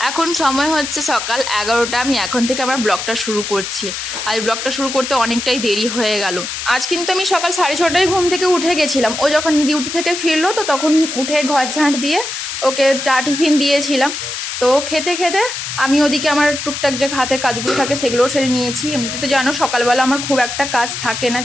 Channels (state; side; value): noise; left; hiss, 5 dB below the sound